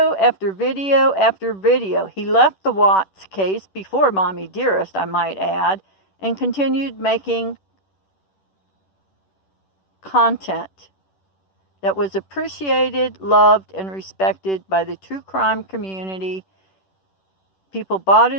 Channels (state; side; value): late; right; 10 ms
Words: after video after video. He left the Watts case before Mommy Dearest, I might add, and continued making content that was appreciated, loved, and respected by the true crime community. People bought